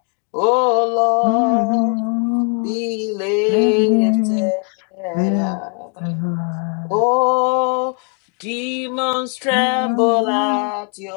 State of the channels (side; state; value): right; quieter; 39.3 dB